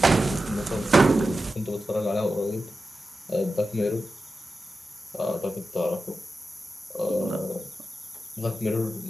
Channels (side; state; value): both; normal; correlation 0.92